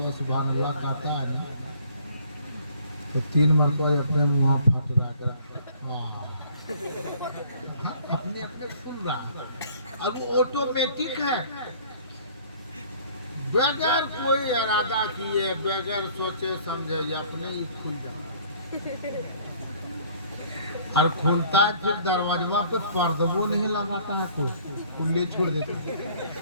सुभान अल्लाह कहता है ना तो 3 मरतबा अपने मुँह फट रहा कर अपने अपने खुल रहा अब वो ऑटोमेटिक है बगैर कोई इरादा किए बगैर सोचे समझे अपने ही खुल जाता और खुलता है फिर दरवाजा पे पर्दबो नहीं लगाता है कोई खुले छोड़ देता है।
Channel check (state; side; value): inverted; both; correlation -0.56